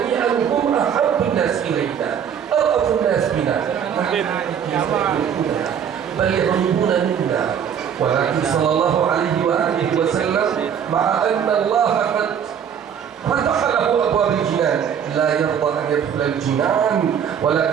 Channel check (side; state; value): left; quieter; 8.2 dB